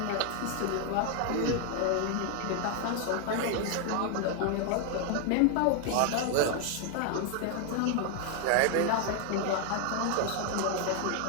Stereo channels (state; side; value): different; both; correlation 0.00